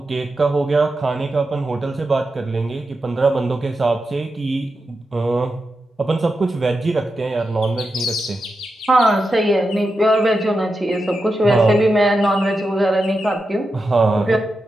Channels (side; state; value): both; normal; correlation 0.89